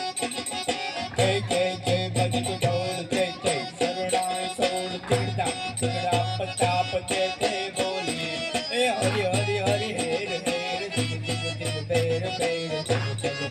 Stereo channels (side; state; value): both; identical; correlation 1.00